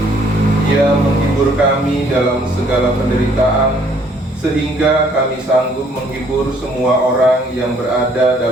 Ia menghibur kami dalam segala penderitaan, sehingga kami sanggup menghibur semua orang yang berada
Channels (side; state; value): both; normal; correlation 0.63